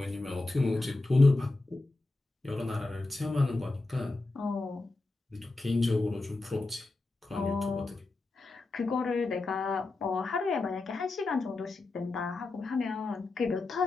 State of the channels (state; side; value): quieter; right; 3.2 dB